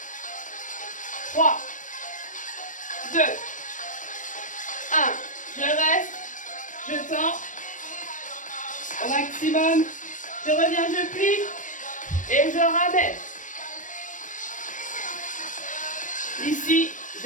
3, 2, 1. Je reste. Je tends. Au maximum. Je reviens, je plie. Et je ramène. Ici,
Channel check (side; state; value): right; late; 0.37 ms